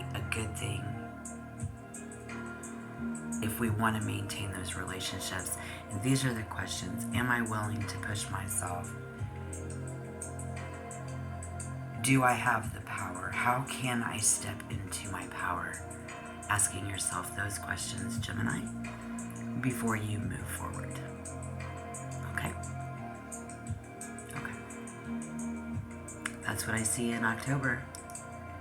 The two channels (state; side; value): identical; both; correlation 1.00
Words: a good thing if we want to maintain those relationships. And these are the questions. Am I willing to push myself? Do I have the power? How can I step into my power? Asking yourself those questions, Gemini, before you move forward. Okay? Okay. That's what I see in October.